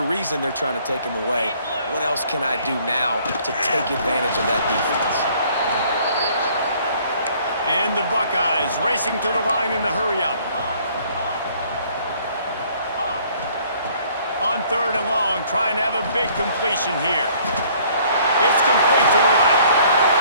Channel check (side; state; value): both; inverted; correlation -0.59